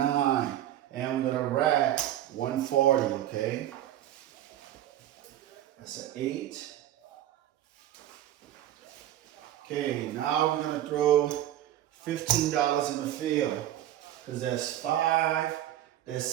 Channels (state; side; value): quieter; left; 12.7 dB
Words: And we're going to rack 140, okay? That's an 8. Okay, now we're going to throw $15 in the field. Because that's 5, that's